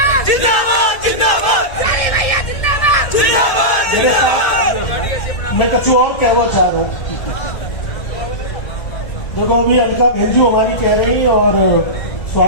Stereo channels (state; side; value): late; right; 1.8 ms